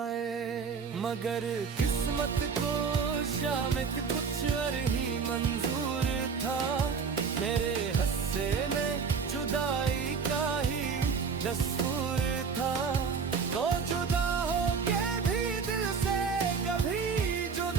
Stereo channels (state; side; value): quieter; left; 5.7 dB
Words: मगर किस्मत को शामित कुछ और ही मंजूर था, मेरे हस्से में जुदाई का ही दस्तूर था, तो जुदा हो के भी दिल से कभी